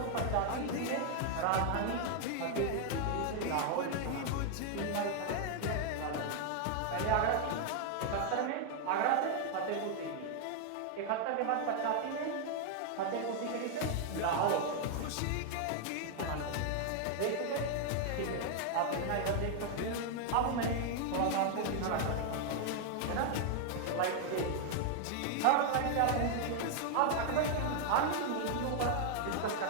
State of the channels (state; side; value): different; both; correlation 0.00